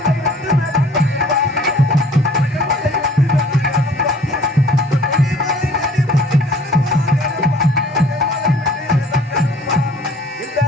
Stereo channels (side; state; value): both; normal; correlation 0.53